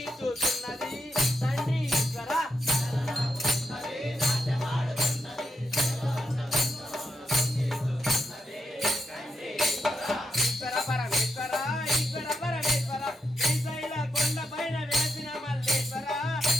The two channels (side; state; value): both; normal; correlation 0.82